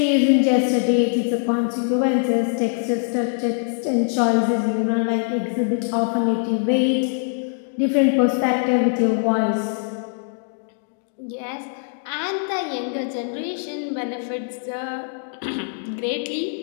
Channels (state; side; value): silent; right; 64 dB below the other